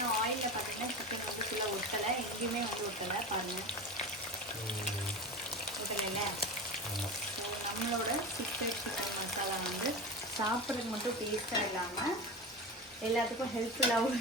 ஆயிலில் பார்த்தீங்கன்னா சிக்கன் வந்து ஃபுல்லாக ஒட்டலை, எங்கேயுமே வந்து ஒட்டலை பாருங்கள். ஒட்டலை. ஸோ நம்மளோட சிக்கன் மசாலா வந்து சாப்பிட்றதுக்கு மட்டும் டேஸ்ட்டாக இல்லாமல் எல்லாத்துக்கும் ஹெல்ப்ஃபுல்லாகவும்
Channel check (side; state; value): both; normal; correlation 0.27